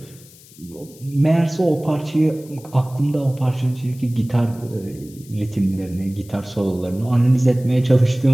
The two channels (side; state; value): left; noise; hiss, 23 dB below the sound